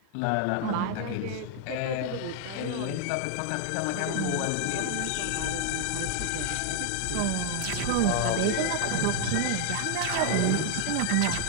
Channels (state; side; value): different; both; correlation 0.00